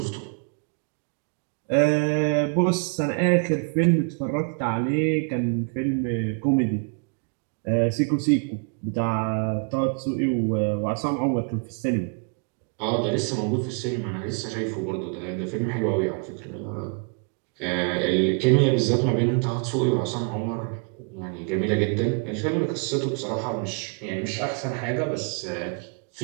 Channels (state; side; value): quieter; left; 38.5 dB